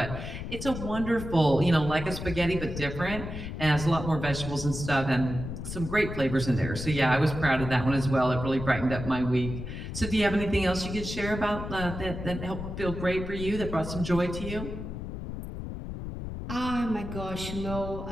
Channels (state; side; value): noise; left; rumble, 7 dB below the sound